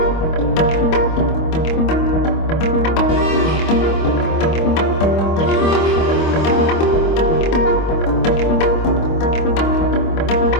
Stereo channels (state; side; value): late; right; 25 ms